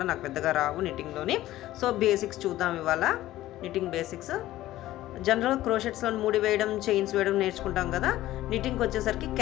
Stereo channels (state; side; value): quieter; right; 15.1 dB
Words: నాకు పెద్దగా రావు నిట్టింగ్లోని. సో బేసిక్స్ చూద్దాం ఇవాళ, నిట్టింగ్ బేసిక్స్. జనరల్ క్రోషెట్స్లో ముడి వేయడం, చైన్స్ వేయడం నేర్చుకుంటాం కదా. నిట్టింగ్కి వచ్చేసరికి